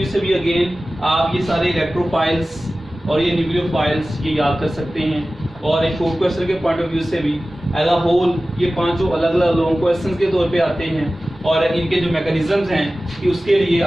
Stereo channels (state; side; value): normal; both; correlation 0.96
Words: से भी अगेन आप ये सारे इलेक्ट्रोफाइल्स और ये न्यूक्लियोफाइल्स ये याद कर सकते हैं, और एक शॉर्ट क्वेश्चन के पॉइंट ऑफ व्यू से भी एज अ होल ये पांचों अलग अलग लॉन्ग क्वेश्चंस के तौर पे आते हैं, और इनके जो मैकेनिज्म्स हैं कि उसके लिए